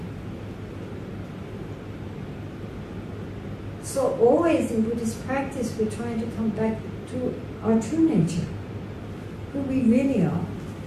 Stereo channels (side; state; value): both; identical; correlation 1.00